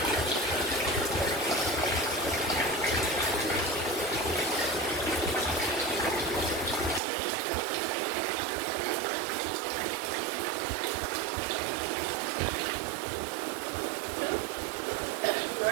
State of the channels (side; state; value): left; drops out; at 7.0 s